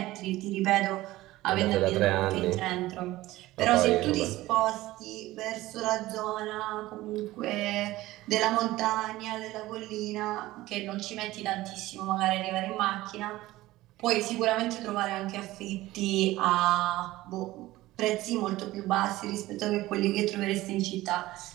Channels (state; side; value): quieter; left; 17.3 dB